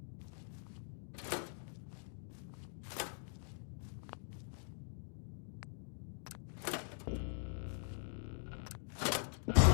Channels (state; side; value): silent; right; digital silence